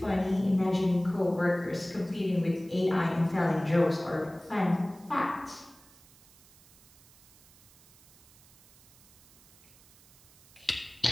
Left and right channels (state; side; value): noise; right; hiss, 26 dB below the sound